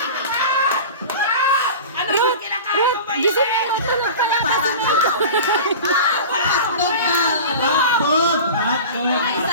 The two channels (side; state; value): both; inverted; correlation -0.34